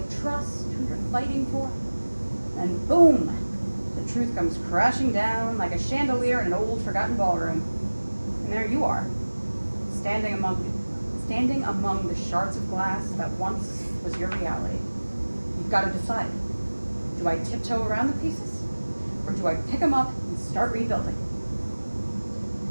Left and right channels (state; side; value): inverted; both; correlation -1.00